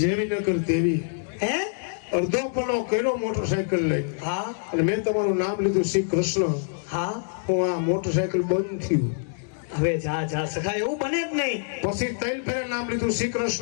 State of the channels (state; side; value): silent; right; digital silence